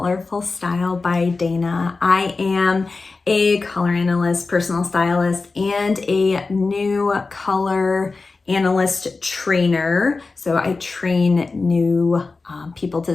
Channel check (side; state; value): right; quieter; 3.9 dB